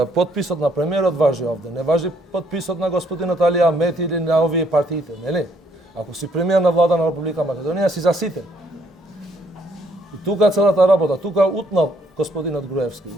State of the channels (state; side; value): normal; both; correlation 0.68